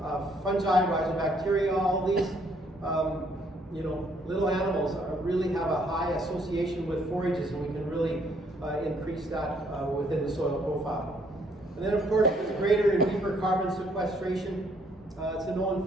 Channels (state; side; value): normal; both; correlation 0.67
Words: fungi, rhizobacteria, all these little animals really have a high association with forages, and we can really increase that within the soil profile. And then, of course, there's greater and deeper carbon sequestration. It's a known